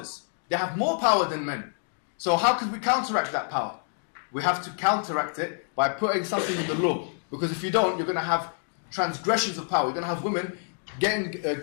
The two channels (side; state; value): right; silent; 60 dB below the other